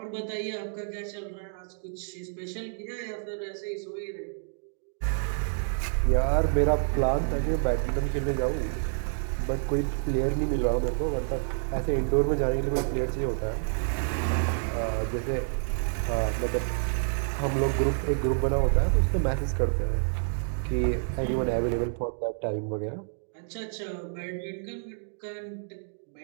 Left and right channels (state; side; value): silent; left; digital silence